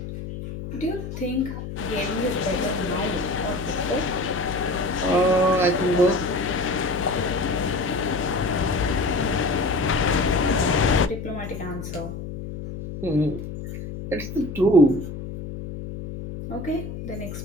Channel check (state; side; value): noise; left; hum, 8 dB below the sound